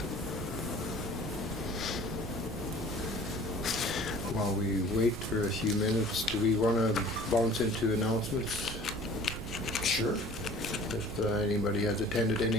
While we wait for a few minutes, do we want to bounce into announcements? Sure. If anybody has attended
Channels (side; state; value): both; normal; correlation 0.48